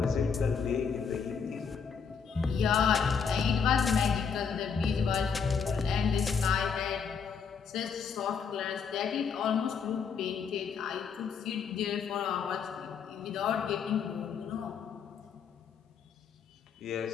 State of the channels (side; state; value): right; quieter; 6.2 dB